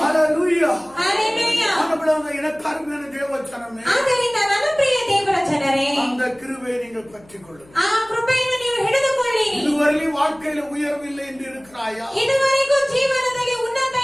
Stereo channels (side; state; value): left; noise; hum, 27 dB below the sound